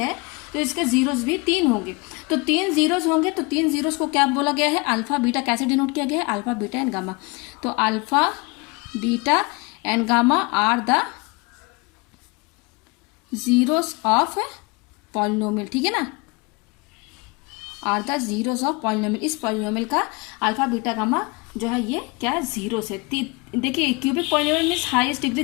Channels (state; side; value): quieter; right; 27.6 dB